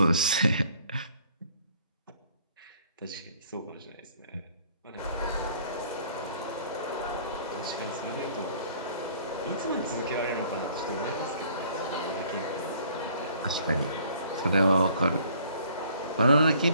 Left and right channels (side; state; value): both; inverted; correlation -0.57